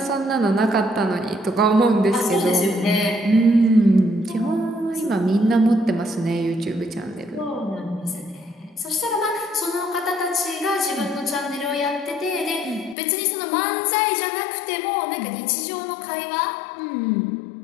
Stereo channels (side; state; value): right; drops out; at 13.0 s